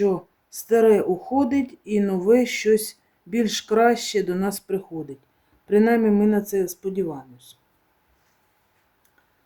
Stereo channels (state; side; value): identical; both; correlation 1.00